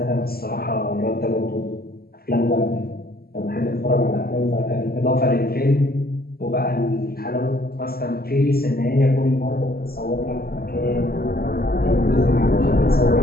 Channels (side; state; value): right; late; 0.44 ms